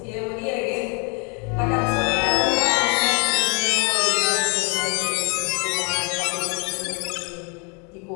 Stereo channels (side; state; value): right; quieter; 35.2 dB